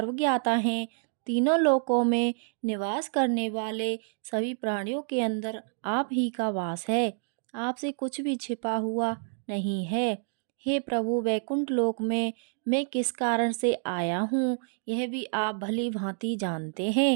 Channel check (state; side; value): silent; left; digital silence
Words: हैं। तीनों लोकों में निवास करने वाले सभी प्राणियों के अंदर आप ही का वास है। आपसे कुछ भी छिपा हुआ नहीं है। हे प्रभु, वैकुंठ लोक में मैं किस कारण से आया हूँ यह भी आप भली भांति जानते